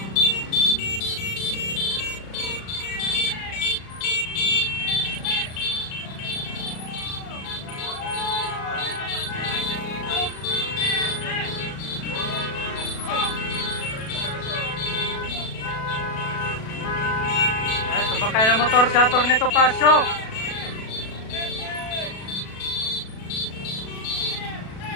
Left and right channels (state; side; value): late; right; 36 ms